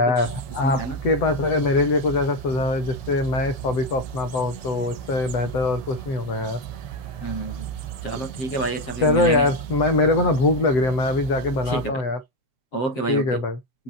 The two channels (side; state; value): right; late; 6.9 ms